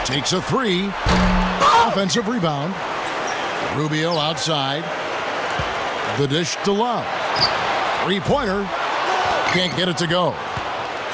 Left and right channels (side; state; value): both; identical; correlation 1.00